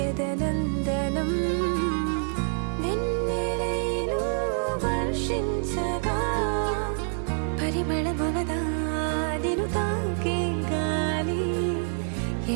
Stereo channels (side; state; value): left; silent; 60 dB below the other